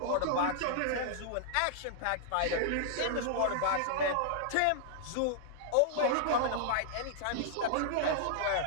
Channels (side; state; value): both; different; correlation -0.01